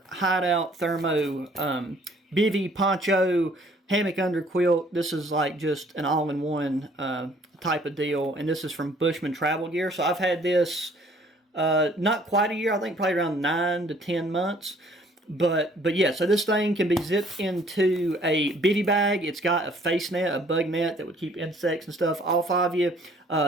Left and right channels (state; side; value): normal; both; correlation 0.58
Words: Hideout Thermo Bivy Poncho hammock under quilt. This is like just an all-in-one type of deal, and this is from Bushman Travel Gear. So I've had this not quite a year, I think probably around 9 to 10 months. But yeah, so this thing can be zipped into a bivy bag. It's got a face net, a bug net that would keep insects and stuff off of you.